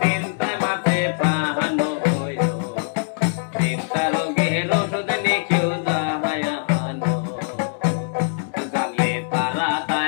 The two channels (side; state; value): right; silent; digital silence